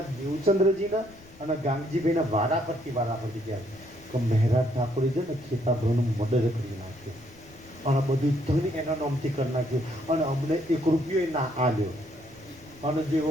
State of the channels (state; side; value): noise; left; rumble, 24 dB below the sound